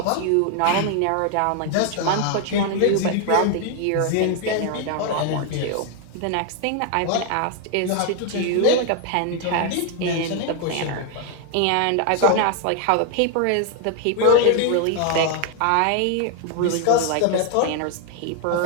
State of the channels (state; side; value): different; both; correlation 0.00